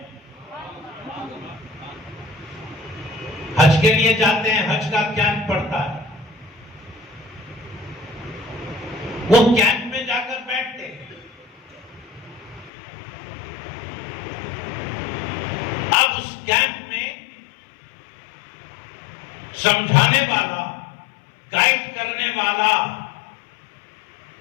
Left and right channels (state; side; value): drops out; right; at 12.7 s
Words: حج کے لیے جاتے ہیں، حج کا کیمپ پڑتا ہے، وہ کیمپ میں جا کر بیٹھتے ہیں۔ اب اس کیمپ میں سمجھانے والا، گائیڈ کرنے والا،